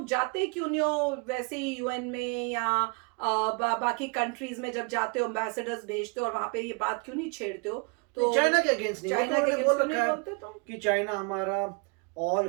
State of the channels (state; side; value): quieter; left; 33.5 dB